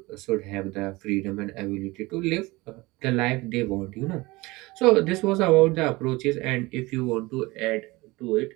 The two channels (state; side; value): quieter; left; 21.9 dB